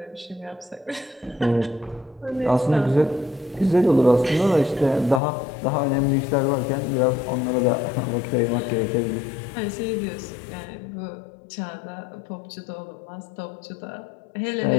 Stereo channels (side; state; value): right; drops out; at 5.2 s